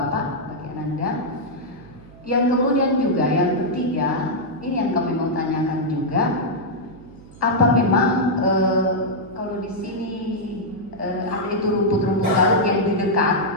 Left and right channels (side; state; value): right; noise; hum, 22 dB below the sound